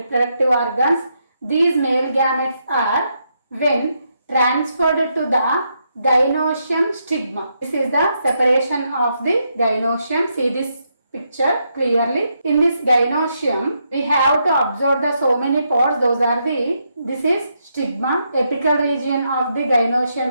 organs. These male gametes are when transferred to the gynoecium stigma. This is the separation of the gynoecium. See this picture clearly. In this gynoecium, we have to observe the so many parts. Those are this is stigma. Apical region of the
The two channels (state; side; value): inverted; both; correlation -0.80